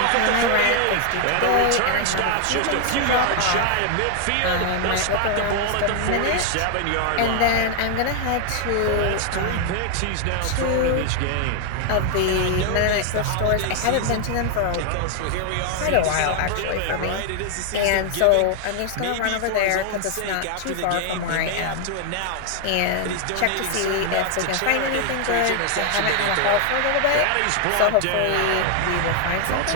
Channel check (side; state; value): both; different; correlation 0.00